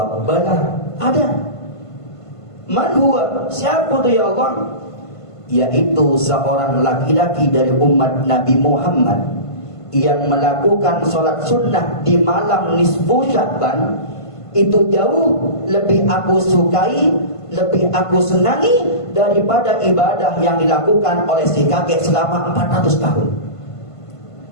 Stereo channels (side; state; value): right; late; 1.5 ms